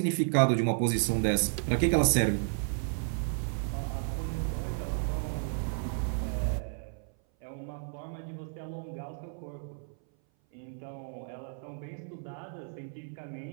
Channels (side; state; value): left; silent; 56 dB below the other